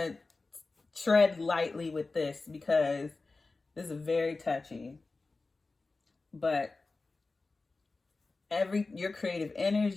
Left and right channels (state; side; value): quieter; right; 3.6 dB